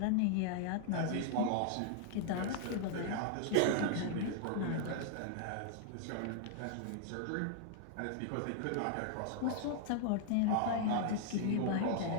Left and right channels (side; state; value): both; different; correlation 0.00